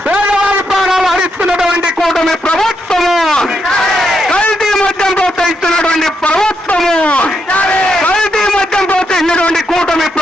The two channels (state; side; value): normal; both; correlation 0.80